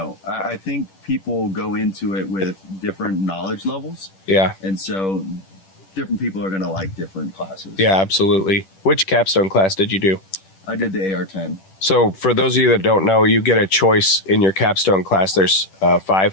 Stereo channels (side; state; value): right; late; 10 ms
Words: I think people go into it with different knowledge levels. Yeah. And so different people are going to like different classes. Yeah, absolutely. Which capstone class did you do? I did the AR-10. So for those of you that don't know, you get a choice in your capstone class. There's five